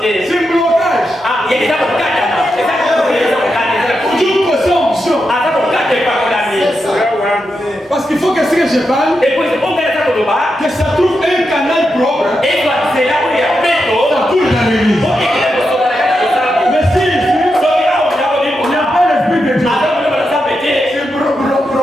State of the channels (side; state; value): both; normal; correlation 0.86